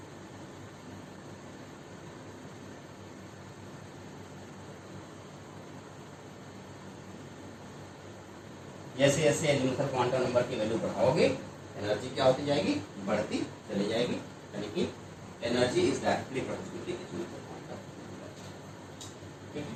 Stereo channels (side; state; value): both; identical; correlation 1.00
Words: जैसे जैसे एजीमुथल क्वांटम नंबर की वैल्यू बढ़ाओगे एनर्जी क्या होती जाएगी? बढ़ती चली जाएगी। यानी कि energy is directly proportional to azimuthal quantum number. ठीक है,